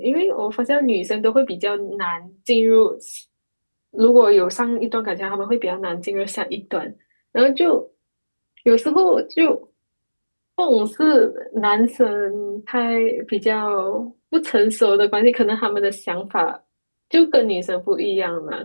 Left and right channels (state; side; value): inverted; both; correlation -1.00